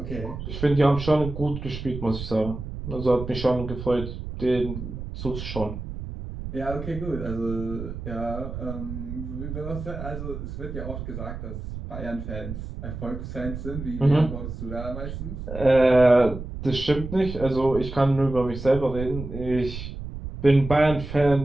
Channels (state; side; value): noise; right; rumble, 8 dB below the sound